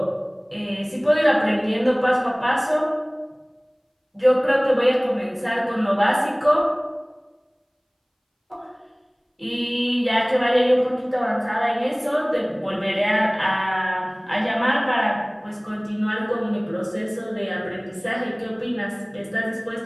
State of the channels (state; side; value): identical; both; correlation 1.00